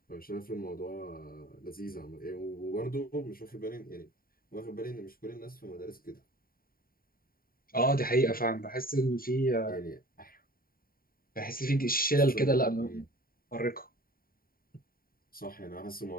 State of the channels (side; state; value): right; late; 0.43 ms